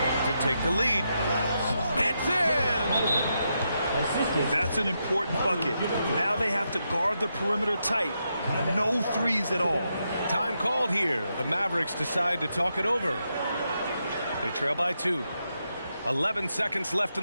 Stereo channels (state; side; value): inverted; both; correlation -0.83